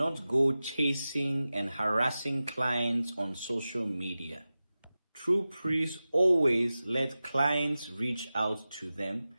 go chasing and harassing clients on social media. True priests always let clients reach out to them,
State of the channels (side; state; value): both; inverted; correlation -0.95